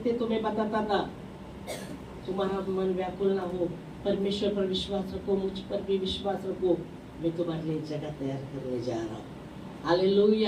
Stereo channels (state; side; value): identical; both; correlation 1.00